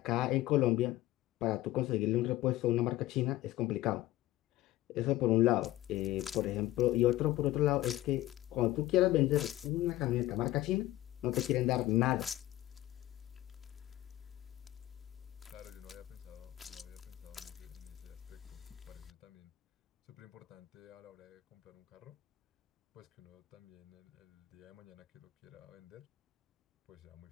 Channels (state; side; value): quieter; right; 15.6 dB